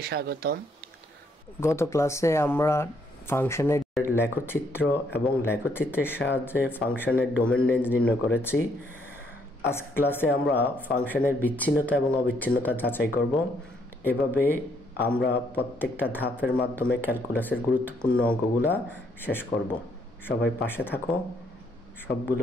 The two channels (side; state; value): both; normal; correlation 0.71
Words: স্বাগতম। গত ক্লাসে আমরা ফাংশনের লেখচিত্র এবং লেখচিত্রের সাহায্যে ফাংশনের ডোমেন রেঞ্জ নির্ণয় করেছি। আজকে ক্লাসে আমরা ফাংশনের বিচ্ছিন্নতা এবং অবিচ্ছিন্নতা যাচাই করব। এভাবে আমরা প্রত্যেকটা ধাপের মাধ্যমে ক্যালকুলাসের গুরুত্বপূর্ণ অঙ্কগুলা শেষ করব। সবাই পাশে থাকো, সবগুলো